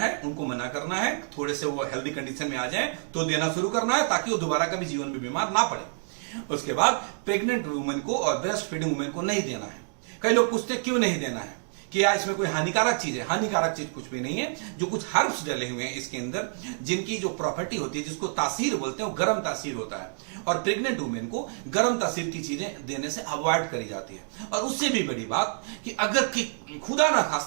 उनको मना करना है। थोड़े से वो हेल्दी कंडीशन में आ जाए तो देना शुरू करना है, ताकि वो दोबारा कभी जीवन में बीमार ना पड़े। उसके बाद प्रेग्नेंट वुमेन को और ब्रेस्ट फीडिंग वुमेन को नहीं देना है। कई लोग पूछते हैं क्यों नहीं देना है, कि यार इसमें कोई हानिकारक चीज है। हानिकारक चीज कुछ भी नहीं है। जो कुछ हर्ब्स डले हुए हैं इसके अंदर, जिनकी जो प्रॉपर्टी होती है, जिसको तासीर बोलते हैं, वो गर्म तासीर होता है, और प्रेग्नेंट वुमेन को गर्म तासीर की चीजें देने से अवॉइड करी जाती है। और उससे भी बड़ी बात कि अगर खुदा ना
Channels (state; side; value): silent; left; 60 dB below the other